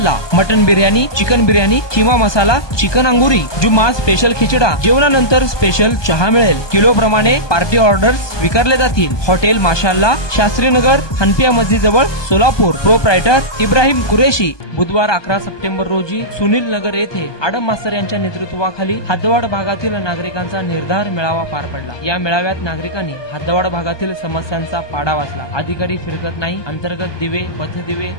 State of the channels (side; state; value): right; late; 1.2 ms